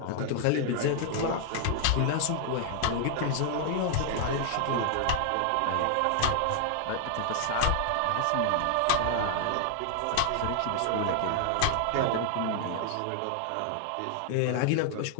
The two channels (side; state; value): both; different; correlation 0.00